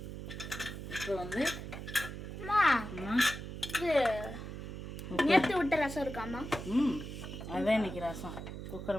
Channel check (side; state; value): right; noise; hum, 8 dB below the sound